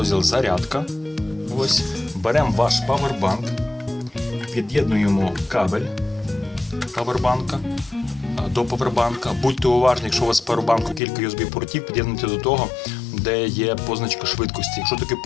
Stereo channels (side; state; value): right; drops out; at 11.0 s